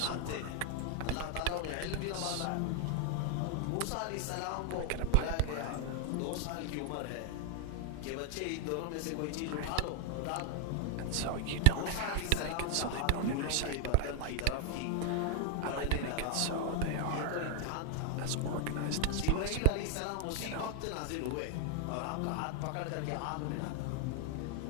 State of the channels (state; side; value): different; both; correlation 0.00